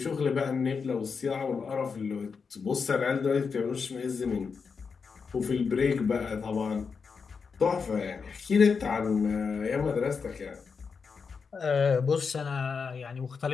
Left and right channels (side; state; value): right; quieter; 5.5 dB